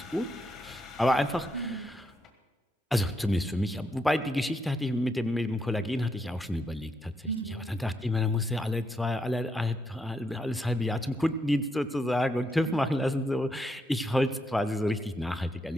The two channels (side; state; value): both; normal; correlation 0.79